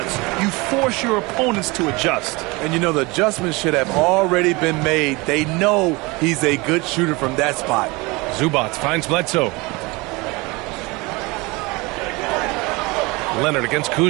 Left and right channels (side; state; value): left; quieter; 24.8 dB